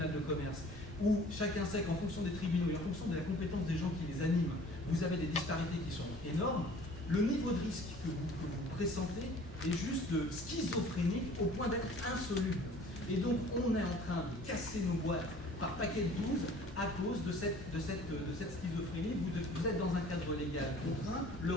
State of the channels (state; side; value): normal; both; correlation 0.49